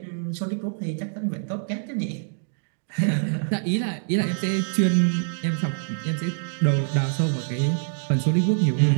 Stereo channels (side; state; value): left; silent; 62 dB below the other